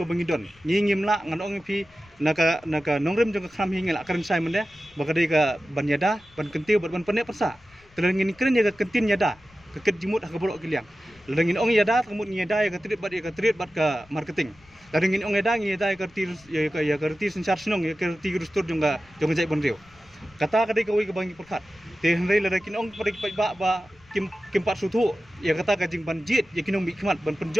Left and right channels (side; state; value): left; noise; rumble, 28 dB below the sound